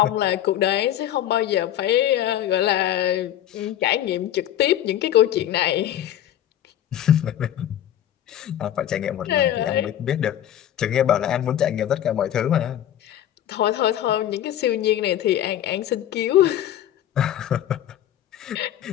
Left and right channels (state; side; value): quieter; right; 11.5 dB